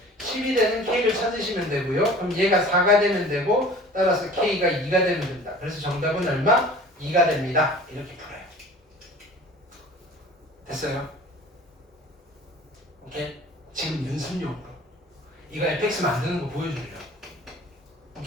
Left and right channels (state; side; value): normal; both; correlation 0.44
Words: 10이 되는 k를 찾으시면 되고요. 그럼 얘가 4가 되면 되고 따라서 k가 2가 되면 된다. 그래서 정답은 얼마? 2가 됩니다. 이렇게 풀어요. 됐어요? 오케이? 지금 연습용으로 이거 fx 만드는 거 보여주려고.